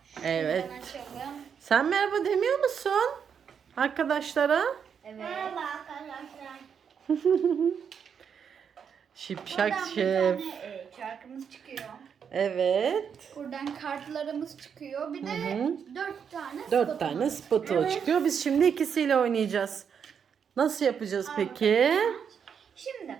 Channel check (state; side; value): quieter; left; 7.2 dB